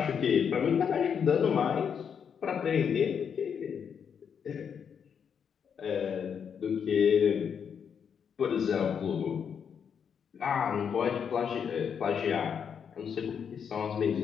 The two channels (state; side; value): quieter; right; 7.3 dB